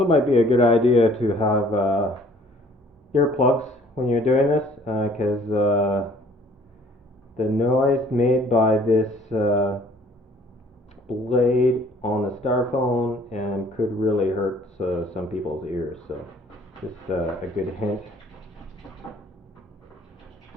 might be a good idea to have earplugs when you're doing this, because the noise made by this blade on the styrofoam could really hurt some people's ears. So just a good hint.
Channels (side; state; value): both; normal; correlation 0.56